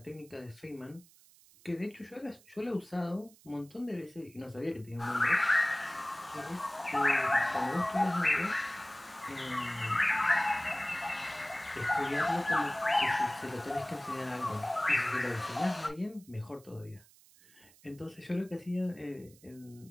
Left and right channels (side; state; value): right; noise; hiss, 26 dB below the sound